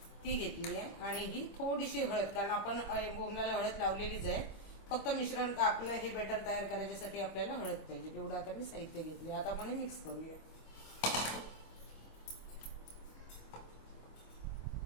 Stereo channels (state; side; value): late; right; 25 ms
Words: ती घेतली आहे। आणि ही थोडीशी हळद, कारण आपण बोंबलाला हळद लावलेलीच आहे। फक्त मिश्रण आपलं हे बॅटर तयार करायच्यासाठी आपल्याला हळद पाहिजे, तेवढं आता मी साहित्य घेतले। आता आपण हे मिक्स करूया।